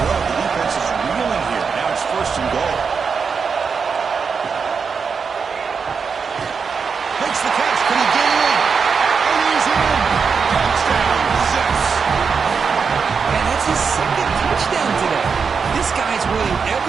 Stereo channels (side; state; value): left; quieter; 5.7 dB